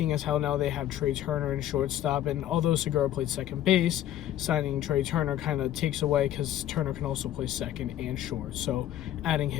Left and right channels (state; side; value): quieter; right; 12.2 dB